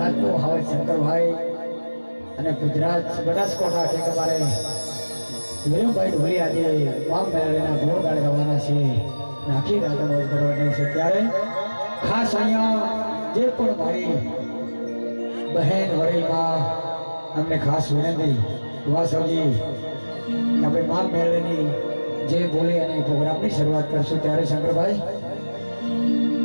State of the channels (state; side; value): inverted; both; correlation -1.00